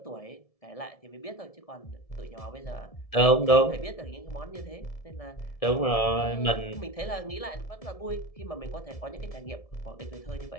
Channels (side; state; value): right; late; 1.7 ms